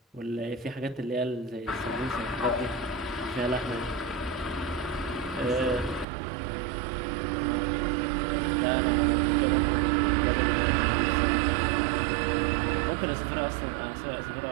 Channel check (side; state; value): left; drops out; at 6.1 s